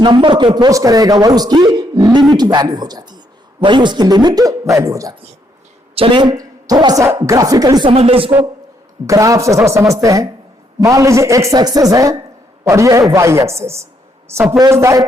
को अप्रोच करेगा वही उसकी लिमिट वैल्यू हो जाती है, वही उसकी लिमिट वैल्यू हो जाती है। चलिए थोड़ा सा ग्राफिकली समझ ले इसको, ग्राफ से थोड़ा समझते हैं। मान लीजिए x एक्सेस है और ये है y एक्सेस। सपोज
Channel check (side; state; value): both; normal; correlation 0.73